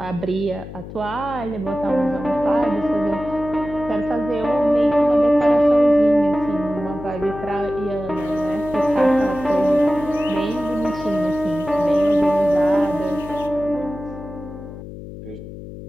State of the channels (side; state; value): left; noise; hum, 13 dB below the sound